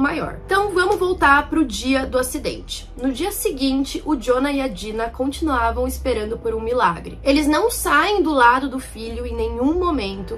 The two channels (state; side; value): identical; both; correlation 1.00